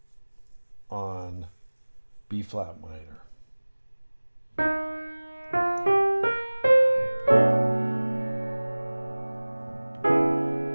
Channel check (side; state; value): both; inverted; correlation -1.00